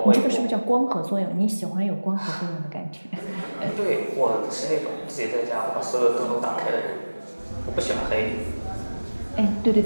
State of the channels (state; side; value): inverted; both; correlation -1.00